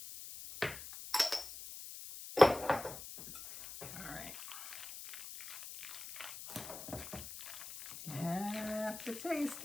All right. You have to taste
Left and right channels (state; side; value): noise; left; hiss, 11 dB below the sound